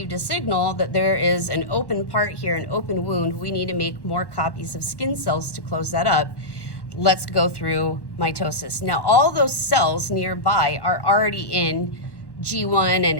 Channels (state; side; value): late; right; 1.1 ms